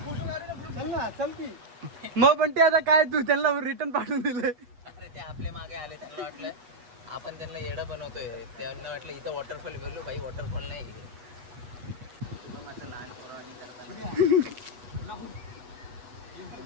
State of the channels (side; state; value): left; late; 8.2 ms